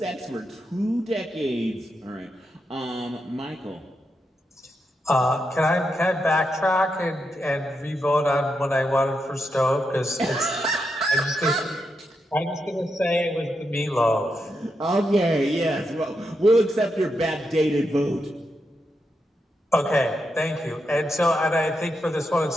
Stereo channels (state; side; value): normal; both; correlation 0.84